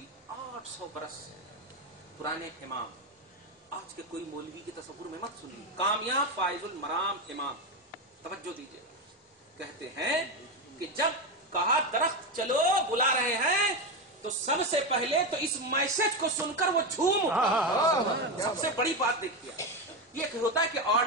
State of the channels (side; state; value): both; normal; correlation 0.13